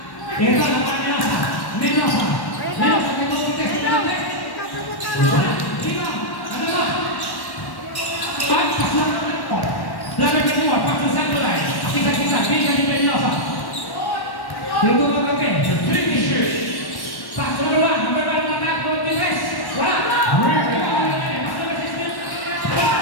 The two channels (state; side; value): late; right; 1.1 ms